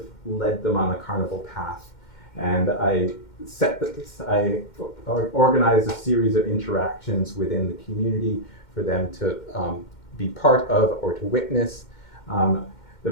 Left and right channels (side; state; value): right; late; 2.1 ms